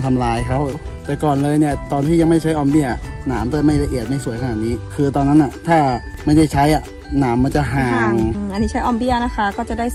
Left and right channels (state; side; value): identical; both; correlation 1.00